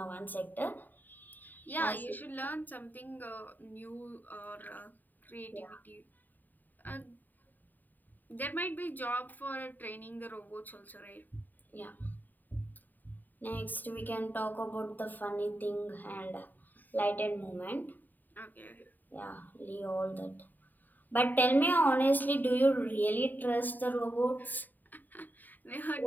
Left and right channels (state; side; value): late; right; 0.088 ms